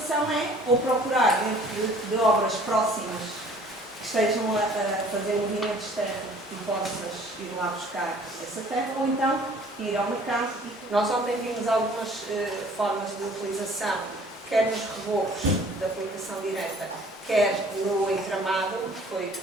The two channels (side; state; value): both; normal; correlation 0.53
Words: é, ou procurar dentro de obras próximas que estejam a fazer movimentos de terra e possas ir lá buscar essa terra, ou então ir ao mercado. Nós ontem vimos algumas formas de utilização, quer nos reborros da aplicação direta, quer no entramado,